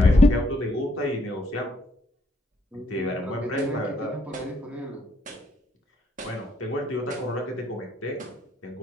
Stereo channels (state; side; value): normal; both; correlation 0.72